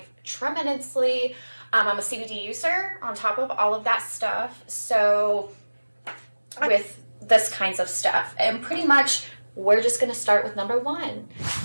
tremendously. I'm a CBD user on top of all of that stuff. So with this kinds of stuff, and pretty much we're just going to start with number 1.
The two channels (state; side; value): inverted; both; correlation -1.00